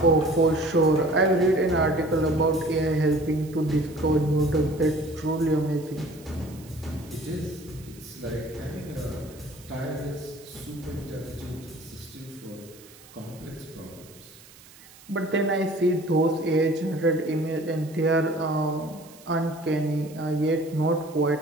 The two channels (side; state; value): right; noise; hiss, 22 dB below the sound